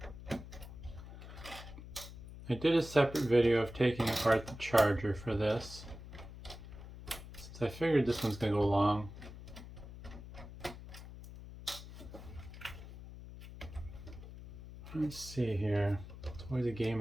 I did a separate video of taking apart the charger for this, since I figured this one's going to go long. Let's see here. It's always a game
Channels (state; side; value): noise; left; hum, 14 dB below the sound